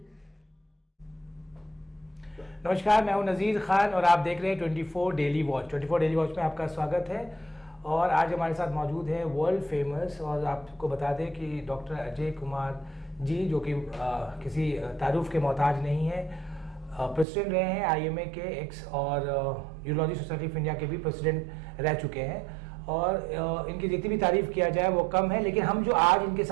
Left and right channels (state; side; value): drops out; left; at 17.2 s